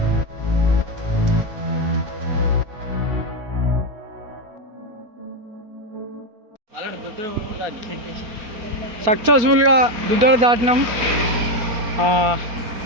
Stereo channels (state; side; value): late; left; 4.3 ms